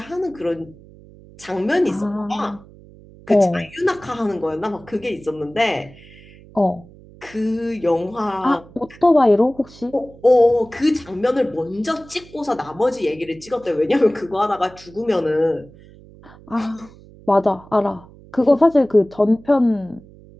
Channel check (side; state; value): right; noise; hum, 22 dB below the sound